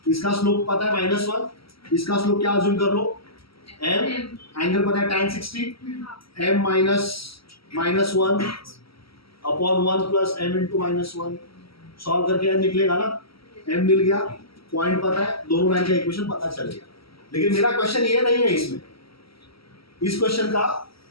इसका स्लोप पता है -1, इसका स्लोप क्या अज्यूम कर लो m, एंगल पता है tan 60, m -1 upon 1 plus m into -1। Solve करके m निकलेगा ना, m मिल गया, पॉइंट पता है, दोनों लाइन का इक्वेशन पता चल गया। लेकिन मेरा क्वेश्चन ये नहीं है, इसमें इस क्वेश्चन का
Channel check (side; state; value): right; late; 0.75 ms